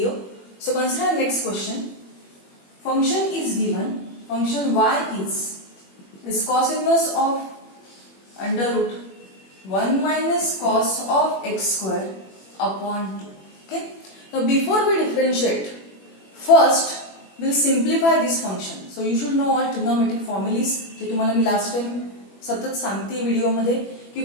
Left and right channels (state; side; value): late; right; 21 ms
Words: So consider next question. Function is given. Function y is cos inverse of under root 1 minus cos of x square upon 2. Okay. Now before we differentiate, first we'll simplify this function. So you should know all trigonometric formulas. जे तुम्हाला मी last time सतत सांगते video मध्ये